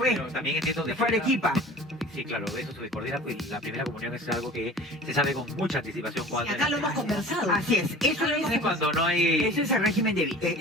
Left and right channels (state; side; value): normal; both; correlation 0.41